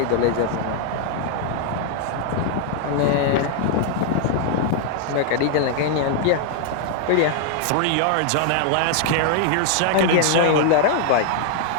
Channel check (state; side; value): different; both; correlation 0.00